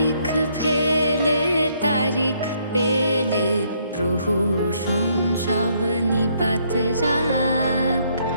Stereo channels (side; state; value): both; inverted; correlation -0.69